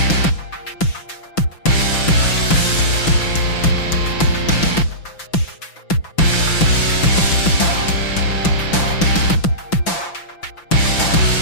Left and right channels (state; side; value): late; right; 5.9 ms